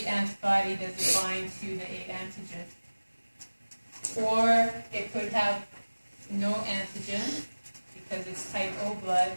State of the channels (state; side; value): inverted; both; correlation -1.00